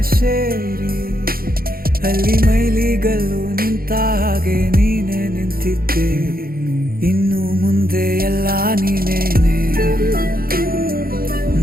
ಸೇರಿ, ಅಲ್ಲಿ ಮೈಲಿಗಲ್ಲು ನಿಂತ ಹಾಗೆ ನೀನೆ ನಿಂತಿದ್ದೆ. ಇನ್ನು ಮುಂದೆ ಎಲ್ಲ ನೀನೇನೆ,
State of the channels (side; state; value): left; late; 0.43 ms